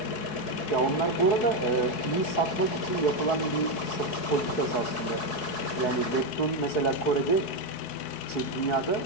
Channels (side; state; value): right; late; 4.7 ms